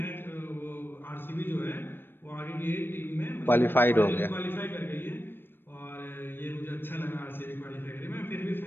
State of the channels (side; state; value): right; late; 0.098 ms